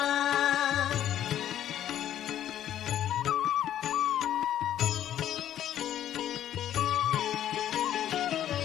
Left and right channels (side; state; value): right; quieter; 11.3 dB